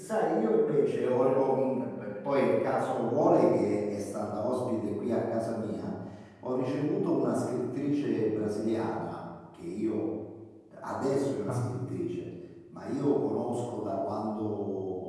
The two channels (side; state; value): both; identical; correlation 1.00